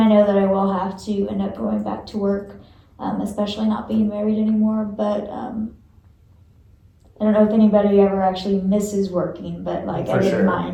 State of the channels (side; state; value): both; identical; correlation 1.00